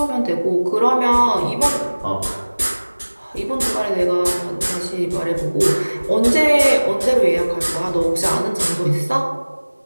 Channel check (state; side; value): inverted; both; correlation -1.00